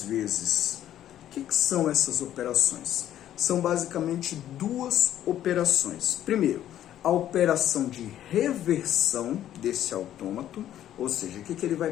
vezes. O que são essas operações? São basicamente 2 operações. Primeiro, a operação de reversão desse autômato, ou seja, o que ele vai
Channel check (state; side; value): quieter; right; 11.7 dB